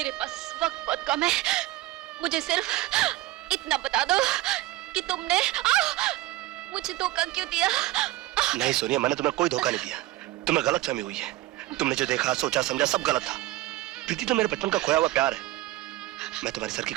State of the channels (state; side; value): quieter; left; 16.9 dB